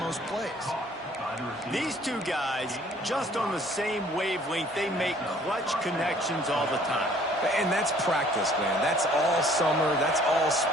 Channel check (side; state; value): both; normal; correlation 0.57